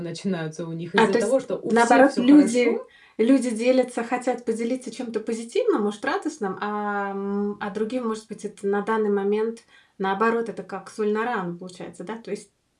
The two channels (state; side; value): identical; both; correlation 1.00